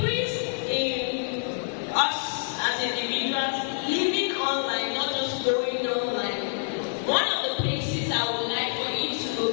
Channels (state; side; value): silent; right; digital silence